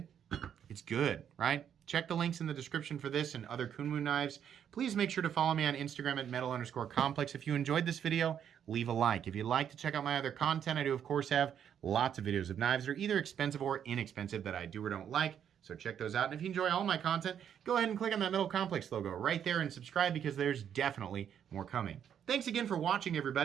it's good, right? Check the links in the description for this and other Kunwu knives. Please make sure to follow me on Instagram at metal_complex. If you enjoyed this video, leave a like. If you'd like to check out my other content, I do, of course, have lots of videos of knives that are either expensive or inexpensive that I do or don't like. So check those out. And if you enjoy all my content, go ahead and click on that Metal Complex logo right there and subscribe because there's definitely more coming. Thanks again for watching,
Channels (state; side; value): quieter; left; 8.9 dB